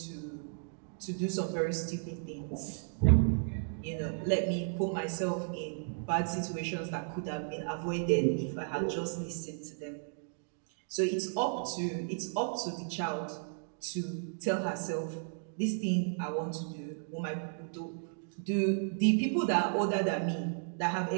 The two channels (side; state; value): left; silent; digital silence